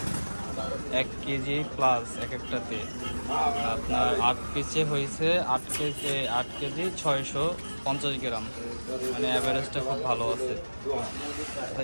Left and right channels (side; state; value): both; inverted; correlation -1.00